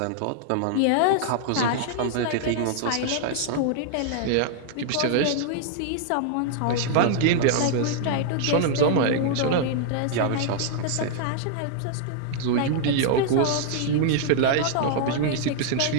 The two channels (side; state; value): both; different; correlation -0.01